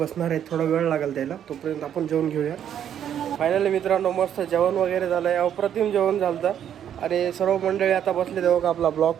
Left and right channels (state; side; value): quieter; left; 9.6 dB